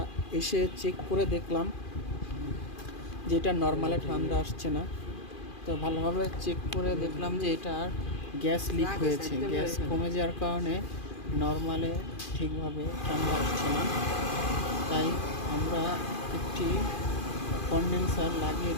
এসে চেক করে দেখলাম যে এটা নর্মালে ঠান্ডা আসছে না। তো ভালোভাবে চেক করে দেখলাম যে এটার গ্যাস লিক হয়েছে। গ্যাস কমে যাওয়ার কারণে নর্মালে ঠিকভাবে ঠান্ডা আসছে না। তাই আমরা একটি কনডেন্সার লাগিয়ে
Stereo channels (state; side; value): late; right; 2.4 ms